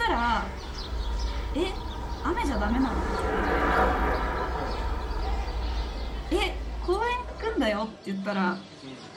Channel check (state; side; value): identical; both; correlation 1.00